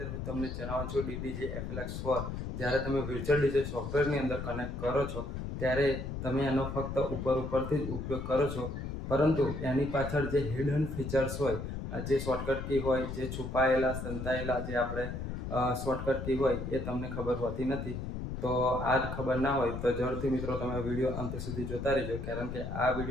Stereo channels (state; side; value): noise; left; rumble, 5 dB below the sound